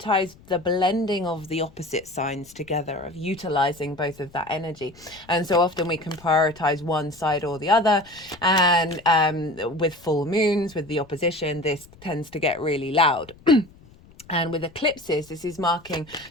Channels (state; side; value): noise; left; rumble, 24 dB below the sound